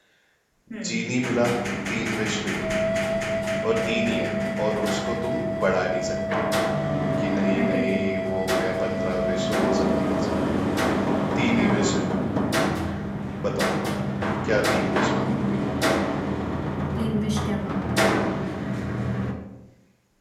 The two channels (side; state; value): both; identical; correlation 1.00